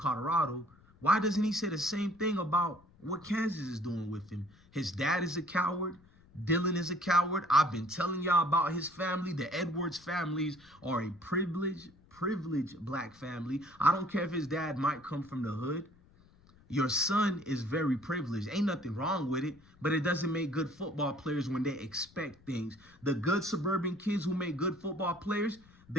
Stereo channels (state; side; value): noise; left; rumble, 27 dB below the sound